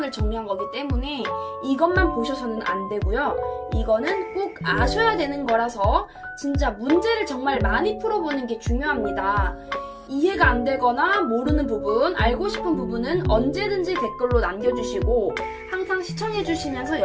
정리한 거기 때문에 이것만 보셔서는 안 되고요. 이거는 꼭 아셔야 되는 거라서 진짜 문제를 정말 많이 풀어보는 게 중요합니다. 이해가 안 되거나 모르는 부분, 알고 싶은 부분은 언제든지 댓글로 남겨주시고 항상 시청해주시면서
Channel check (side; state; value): both; identical; correlation 1.00